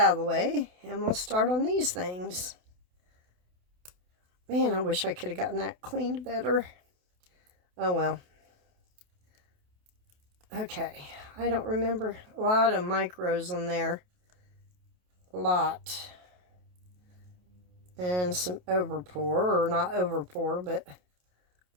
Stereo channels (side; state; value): left; late; 28 ms